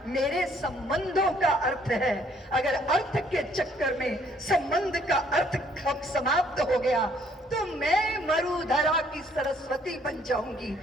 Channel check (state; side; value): normal; both; correlation 0.64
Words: मेरे संबंधों का अर्थ है। अगर अर्थ के चक्कर में संबंध का अर्थ समाप्त हो गया तो मैं मरुधरा की सरस्वती बन जाऊंगी,